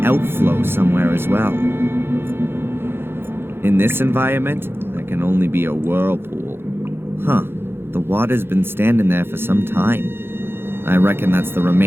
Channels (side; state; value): left; late; 0.11 ms